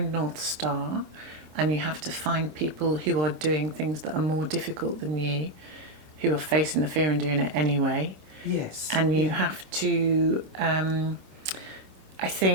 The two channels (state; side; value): late; left; 26 ms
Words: North Star, and you have to find people who are doing things that are more difficult than you, who are facing the fear and doing it anyway. Yes. And you have to, I